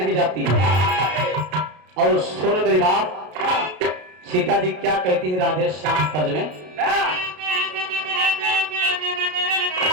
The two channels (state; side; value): late; left; 33 ms